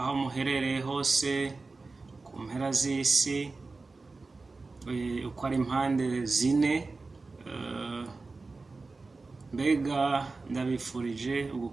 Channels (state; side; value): quieter; left; 3.8 dB